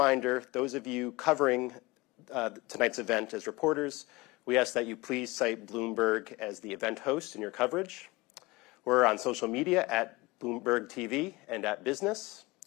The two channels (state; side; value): quieter; right; 22.2 dB